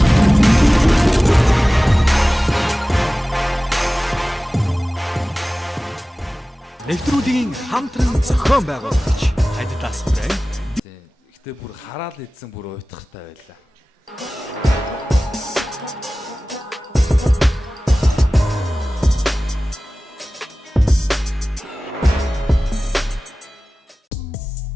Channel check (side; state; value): both; normal; correlation 0.97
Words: Нэвтрүүлгийн хамтран зохион байгуулагч Adidas брэнд. Гэтэ бүр хараал идсэн бүр уйтгартай байлаа.